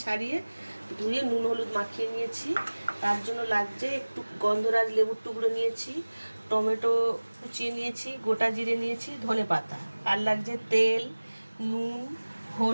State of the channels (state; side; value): inverted; both; correlation -1.00